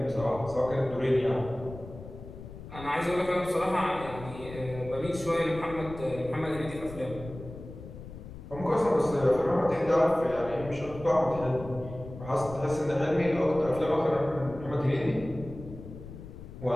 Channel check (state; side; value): noise; left; rumble, 13 dB below the sound